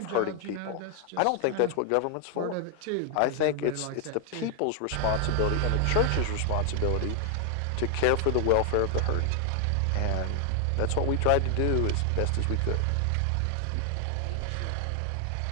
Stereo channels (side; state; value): both; different; correlation 0.00